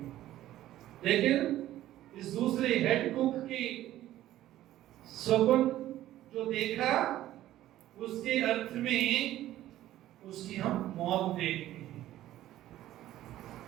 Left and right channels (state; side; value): quieter; left; 13.9 dB